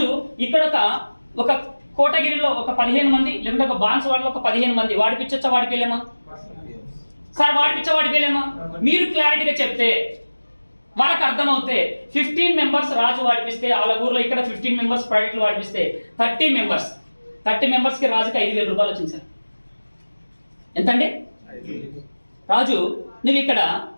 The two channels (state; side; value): inverted; both; correlation -1.00